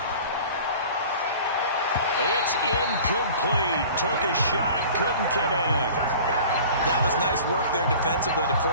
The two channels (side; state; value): both; inverted; correlation -0.43